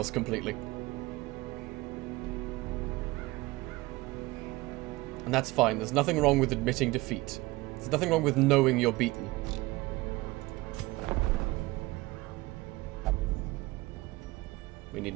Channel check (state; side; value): quieter; left; 20.8 dB